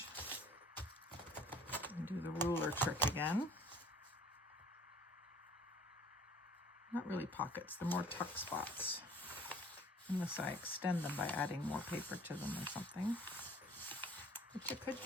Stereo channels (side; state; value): both; normal; correlation 0.52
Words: and do the ruler trick again. Not really pockets, they're more tuck spots, unless I extend them by adding more paper to them or something, which I could